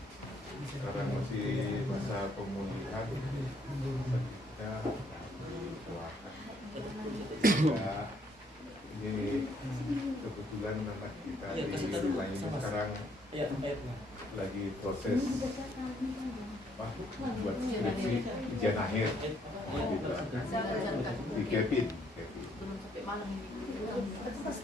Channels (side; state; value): both; normal; correlation 0.68